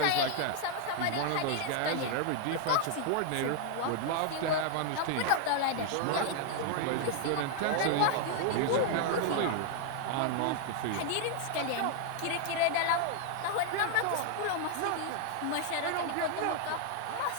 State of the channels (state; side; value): different; both; correlation 0.00